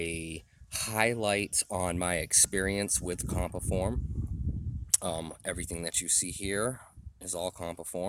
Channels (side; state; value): both; identical; correlation 1.00